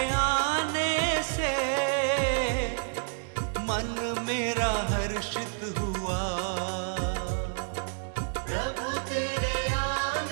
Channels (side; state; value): left; silent; digital silence